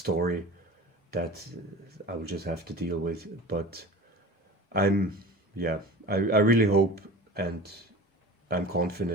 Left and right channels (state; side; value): normal; both; correlation 0.37